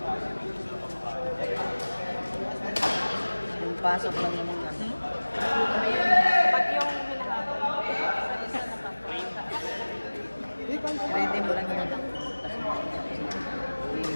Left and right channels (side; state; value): both; inverted; correlation -1.00